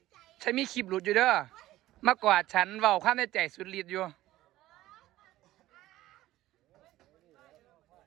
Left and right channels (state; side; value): quieter; left; 15.7 dB